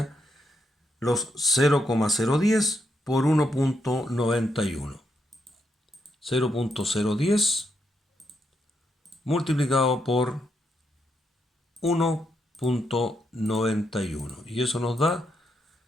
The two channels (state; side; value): normal; both; correlation 0.80